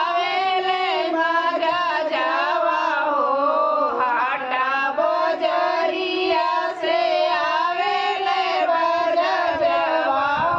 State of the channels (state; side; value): identical; both; correlation 1.00